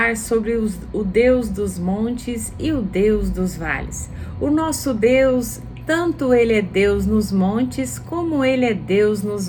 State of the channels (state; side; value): identical; both; correlation 1.00